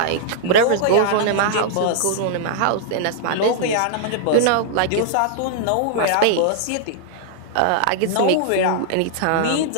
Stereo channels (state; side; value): different; both; correlation -0.01